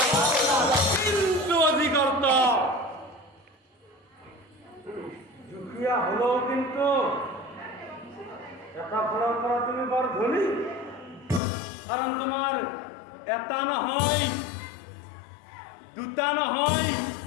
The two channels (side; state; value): right; drops out; at 11.4 s